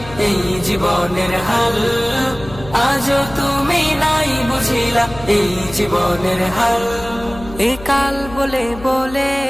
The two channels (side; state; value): left; noise; hum, 16 dB below the sound